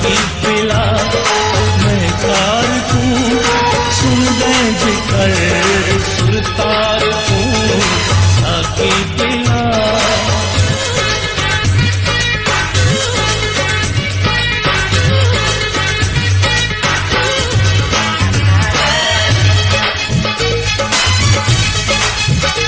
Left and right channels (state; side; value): identical; both; correlation 1.00